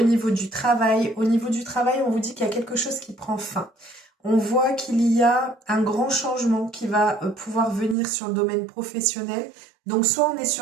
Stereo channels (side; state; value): left; drops out; at 8.0 s